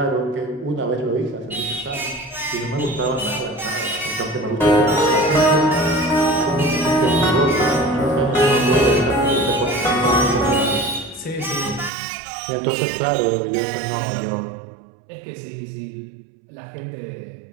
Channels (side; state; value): left; drops out; at 11.9 s